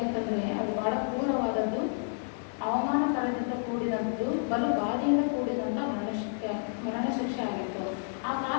ಅದು ಬಹಳ ಕ್ರೂರವಾದದ್ದು, ಅವಮಾನಕರದಿಂದ ಕೂಡಿದಂಥದ್ದು, ಬಲು ಬಾಧೆಯಿಂದ ಕೂಡಿದಂಥ ಮರಣ ಶಿಕ್ಷೆ ಆಗಿತ್ತು. ಆ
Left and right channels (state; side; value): silent; right; 58 dB below the other